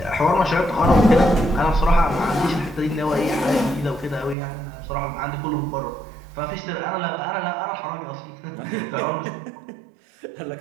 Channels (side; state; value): left; drops out; at 4.4 s